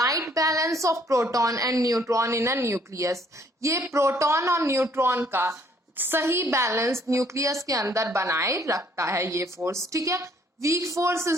balance of proton and neutron in a nucleus. ये प्रोटॉन और न्यूट्रॉन का सही बैलेंस न्यूक्लियस के अंदर बनाए रखता है ये फोर्स, ठीक है। Weak force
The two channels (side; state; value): both; normal; correlation 0.63